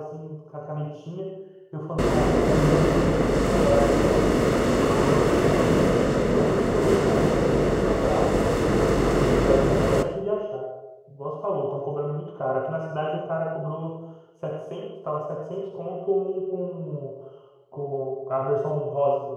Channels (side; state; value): both; identical; correlation 1.00